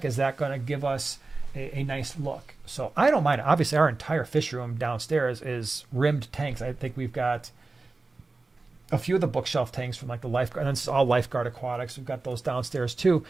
is that going to give us a nice look? So I don't mind. Obviously, our entire fish room downstairs is rimmed tanks. I think we've got a few of the bookshelf tanks from like the lifeguard, and it's all lifeguard aquatics. We've got those downstairs too.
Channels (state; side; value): quieter; left; 3.6 dB